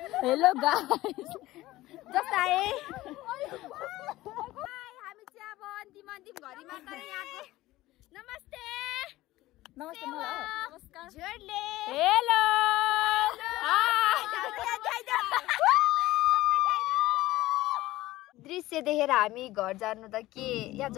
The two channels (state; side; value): quieter; right; 17.1 dB